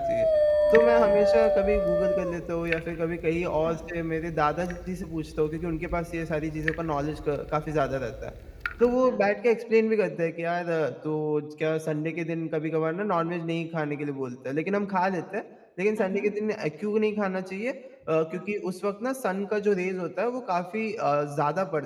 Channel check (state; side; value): identical; both; correlation 1.00